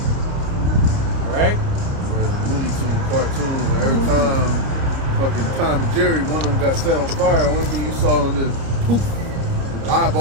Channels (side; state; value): left; late; 30 ms